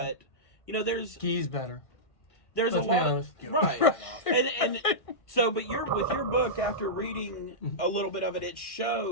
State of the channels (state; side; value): late; right; 1.6 ms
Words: there's... Ghee's better. There's Let's a lot honest. right. and so, but with your book, after reading a little bit of it, it